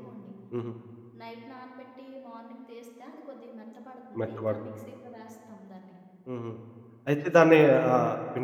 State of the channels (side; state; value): both; identical; correlation 1.00